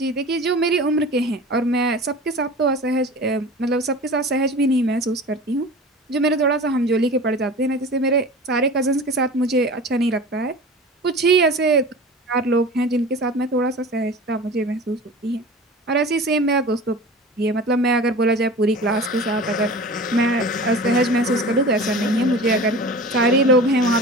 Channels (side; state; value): both; normal; correlation 0.37